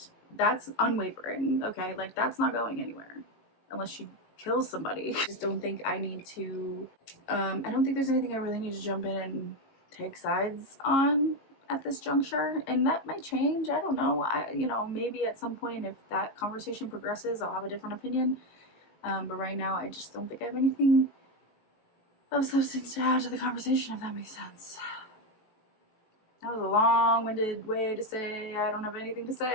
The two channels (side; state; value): right; late; 18 ms